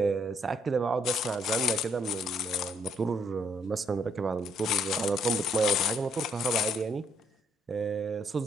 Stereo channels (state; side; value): normal; both; correlation 0.70